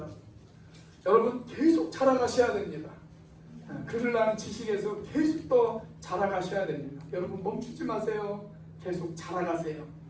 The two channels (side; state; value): both; identical; correlation 1.00